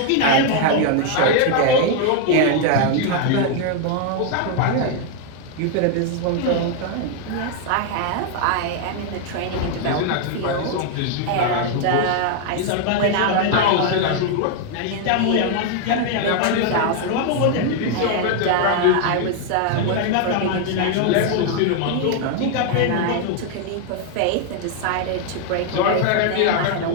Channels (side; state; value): both; different; correlation 0.00